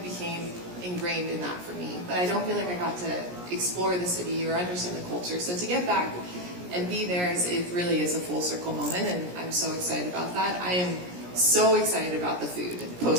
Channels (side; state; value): left; late; 17 ms